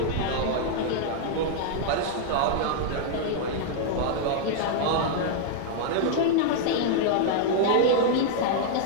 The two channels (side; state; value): both; different; correlation -0.01